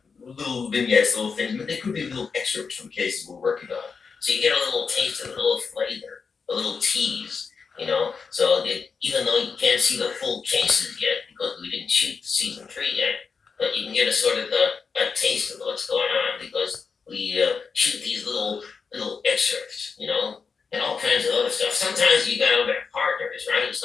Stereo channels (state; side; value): quieter; right; 5.4 dB